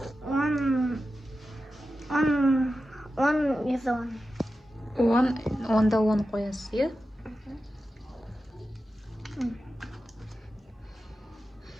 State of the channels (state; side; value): normal; both; correlation 0.92